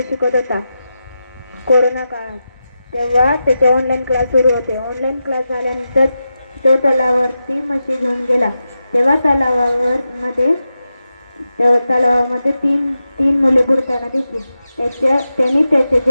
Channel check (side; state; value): both; inverted; correlation -0.90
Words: शिकत होता. कोरोना काळात तेव्हा त्याचे ऑनलाईन क्लास सुरू होते. ऑनलाईन क्लास झाल्यानंतर तो तलावावरती म्हशी घेऊन गेला. तेव्हा तलावामध्ये तीन मुले बुडताना दिसली. त्यांनी त्याच्या